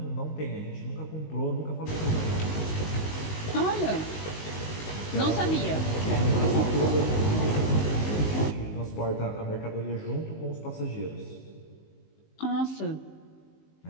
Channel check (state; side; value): late; right; 19 ms